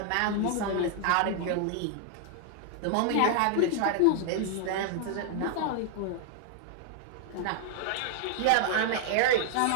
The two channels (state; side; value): different; both; correlation 0.00